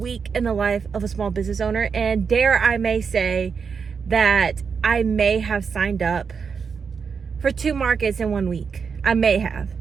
in the life of a small business owner, and dare I may say that I may have signed up for 2 markets in 1 week. I may have.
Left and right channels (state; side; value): quieter; left; 5.9 dB